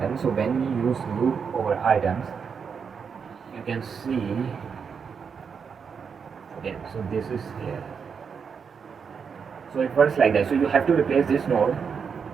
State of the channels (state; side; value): quieter; left; 6.3 dB